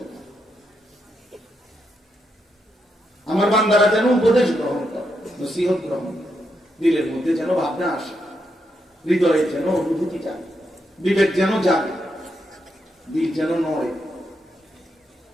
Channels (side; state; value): both; normal; correlation 0.81